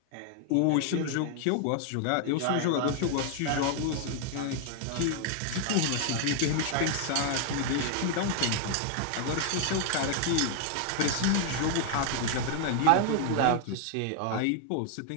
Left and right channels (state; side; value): different; both; correlation 0.00